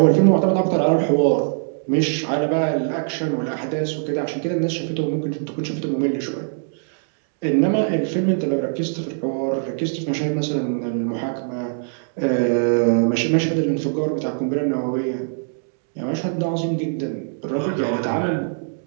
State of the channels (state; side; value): silent; left; digital silence